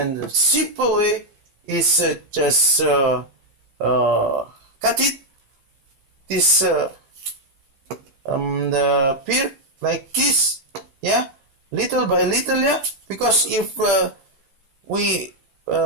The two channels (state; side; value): late; left; 15 ms